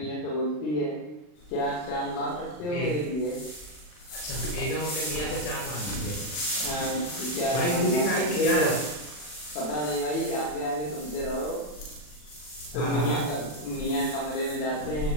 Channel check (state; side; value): late; right; 40 ms